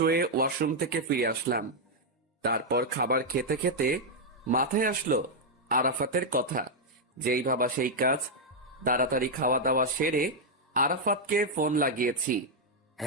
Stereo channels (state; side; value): normal; both; correlation -0.02